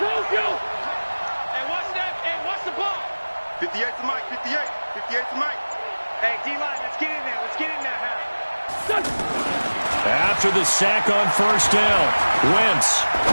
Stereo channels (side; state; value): both; inverted; correlation -1.00